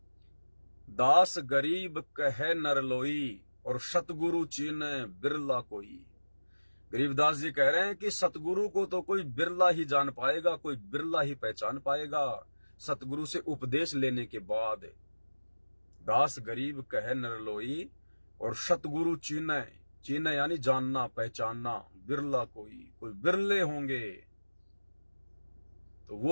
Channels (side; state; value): both; inverted; correlation -1.00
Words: दास गरीब कहे नरलोई और सतगुरु चीने बिरला कोई। गरीबदास जी कह रहे हैं कि सतगुरु को तो कोई बिरला ही जान पाएगा, कोई बिरला ही पहचान पाएगा सतगुरु से उपदेश लेने के बाद। दास गरीब कहे नरलोई और सतगुरु चीने, चीने यानी जानना पहचानना, बिरला कोई, कोई बिरले होंगे। तो